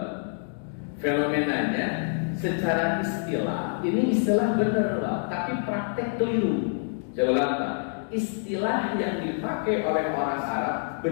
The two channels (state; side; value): silent; right; digital silence